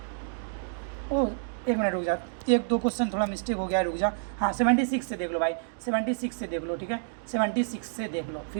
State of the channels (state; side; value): silent; left; digital silence